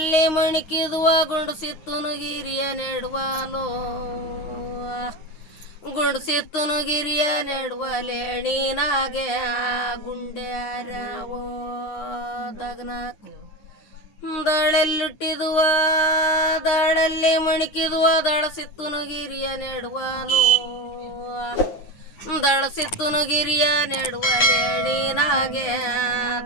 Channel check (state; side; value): late; right; 9.5 ms